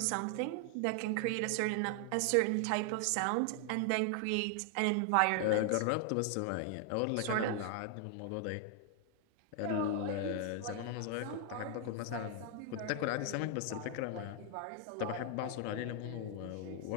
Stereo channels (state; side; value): different; both; correlation 0.00